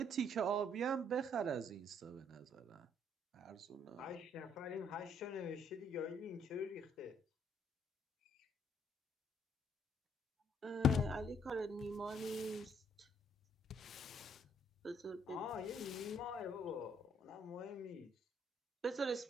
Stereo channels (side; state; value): both; normal; correlation 0.67